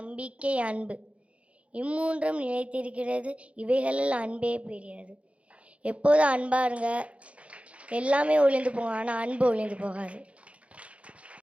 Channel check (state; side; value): late; left; 0.063 ms